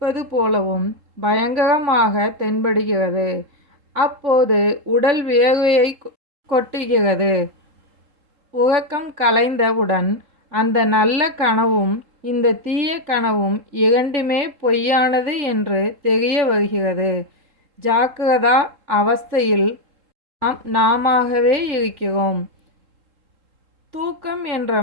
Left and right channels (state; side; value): late; left; 3.7 ms